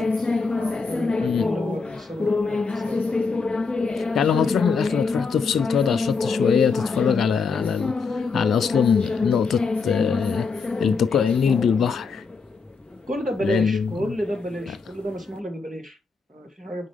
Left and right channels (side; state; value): right; quieter; 4.9 dB